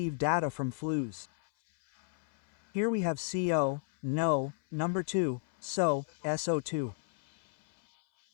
data from flues. Here we have CO, NO, number 2, SO, SO2.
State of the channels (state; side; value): silent; right; 56 dB below the other